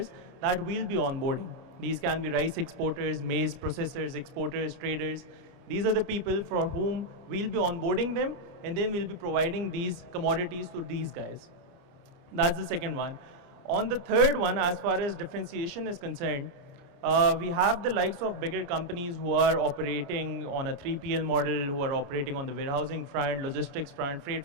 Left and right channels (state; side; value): late; left; 29 ms